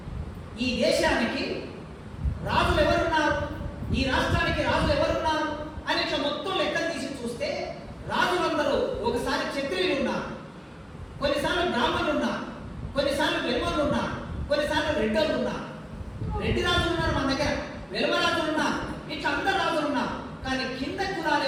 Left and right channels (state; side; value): identical; both; correlation 1.00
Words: ఈ దేశానికి రాజులు ఎవరున్నారు, ఈ రాష్ట్రానికి రాజులు ఎవరున్నారు అని ఇట్లా మొత్తం లెక్కలు తీసి చూస్తే రాజులందరూ ఒకసారి క్షత్రియులు ఉన్నారు, కొన్నిసార్లు బ్రాహ్మణులు ఉన్నారు, కొన్నిసార్లు వెలుమలు ఉన్నారు, కొన్నిసార్లు రెడ్డలు ఉన్నారు. రెడ్డి రాజులు ఉన్నారు మన దగ్గర, వెలుమ రాజులు ఉన్నారు, ఇట్లా అందరు రాజులు ఉన్నారు. కానీ కింద కులాలు